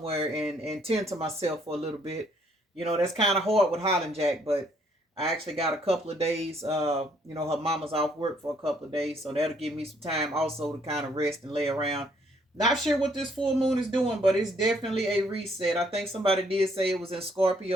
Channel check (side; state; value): both; normal; correlation 0.67